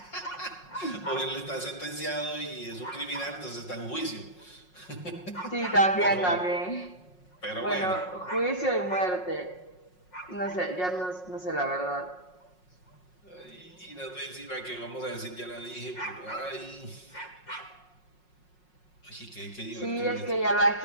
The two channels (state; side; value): late; right; 5.5 ms